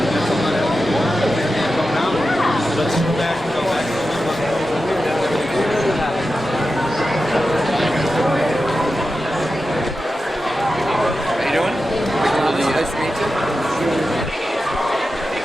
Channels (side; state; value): both; normal; correlation 0.91